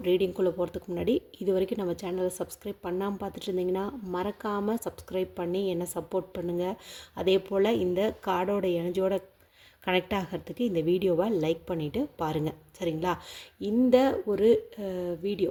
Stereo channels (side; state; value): both; identical; correlation 1.00